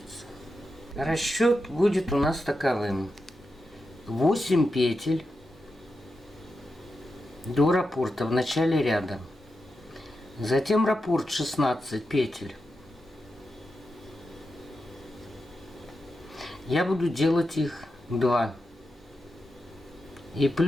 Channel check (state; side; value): normal; both; correlation 0.89